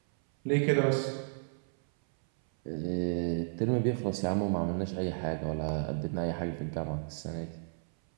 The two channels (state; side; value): silent; left; 56 dB below the other